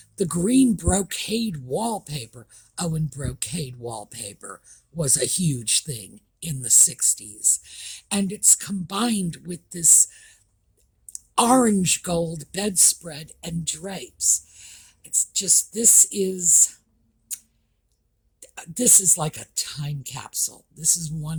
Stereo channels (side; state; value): both; identical; correlation 1.00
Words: the green brocade wallpaper. Oh, and brocade wallpaper was a huge thing in the 60s. And it's combined with this orange gold bedspread and drapes. It's just, this is like a time capsule. This is